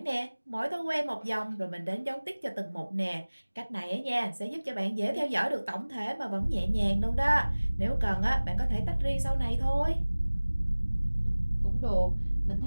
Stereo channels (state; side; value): inverted; both; correlation -1.00